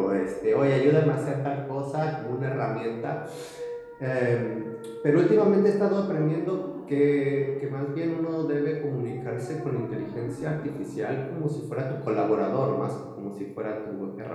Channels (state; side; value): identical; both; correlation 1.00